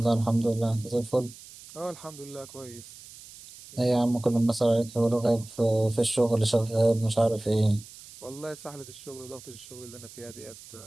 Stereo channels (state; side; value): noise; right; hiss, 18 dB below the sound